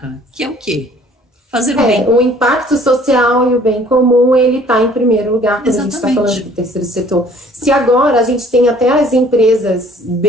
que é o quê? Fazer o bem. O impacto social e o bem comum, ele está em primeiro lugar quando a gente está falando do terceiro setor. Se agora a gente tem até as empresas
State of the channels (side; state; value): both; normal; correlation 0.55